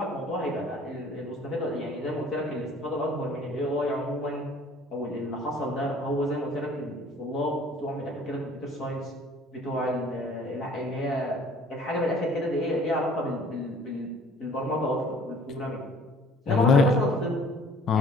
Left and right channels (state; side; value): normal; both; correlation 0.53